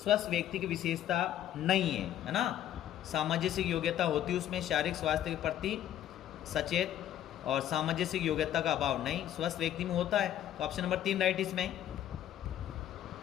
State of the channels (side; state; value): right; quieter; 11.4 dB